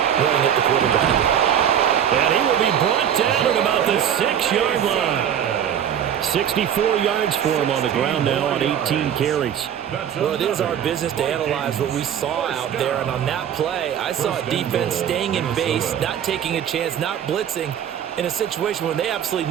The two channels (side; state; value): left; quieter; 9.3 dB